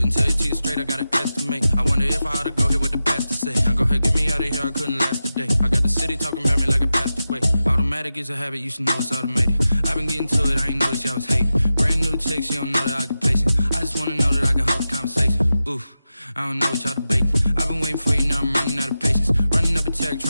tell you to you straight, I gotta estimate. I wonder if I ought to go here with the best to say. Now go ahead, get me out of here, I couldn't last today. I got the city talking about me like I passed away. Automatic is a habit, you should know it's automated. I've been getting to it, I ain't noticed y'all was hating. Brand new chick, she don't know the occupation. I just wanna know that I can hold a conversation. Oof, I don't know what y'all debating. I've been waiting for you, now I'm running out of patience. Running up a check,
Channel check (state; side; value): inverted; both; correlation -0.92